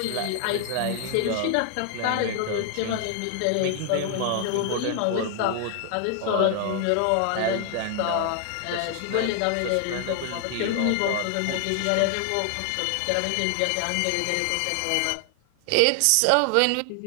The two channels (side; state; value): both; different; correlation 0.00